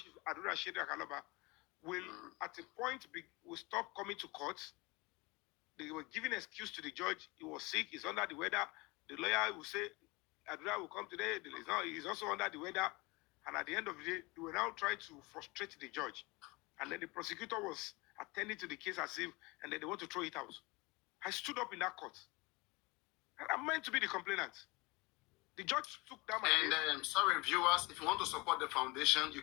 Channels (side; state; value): right; quieter; 24.9 dB